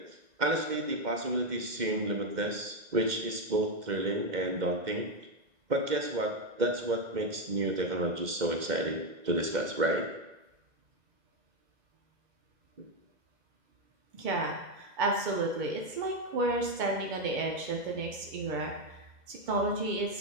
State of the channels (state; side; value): late; left; 2.1 ms